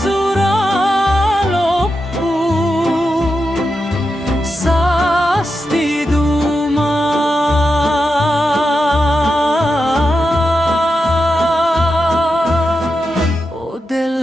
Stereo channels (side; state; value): both; normal; correlation 0.88